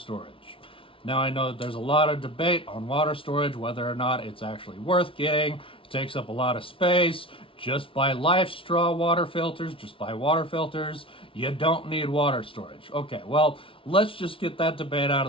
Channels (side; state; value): right; late; 0.26 ms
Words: Now I know that there's a lot of debate on water storage, whether or not it's actually worth getting. It takes up a lot of space. Just buy Life Straw water filters, just buy water filters. You don't need water storage. Okay, well, let's just get that debate out of